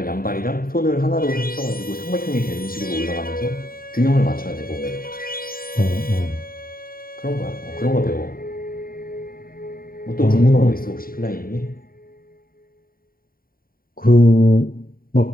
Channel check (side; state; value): right; late; 0.42 ms